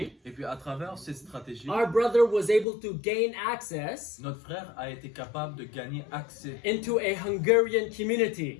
Et puis à travers cette stratégie, our brother was able to gain access notre frère a été capable de gagner accès into a Hungarian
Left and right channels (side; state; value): right; drops out; at 2.7 s